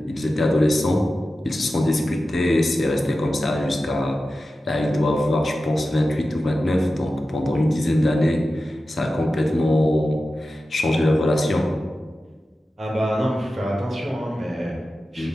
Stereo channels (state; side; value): normal; both; correlation 0.93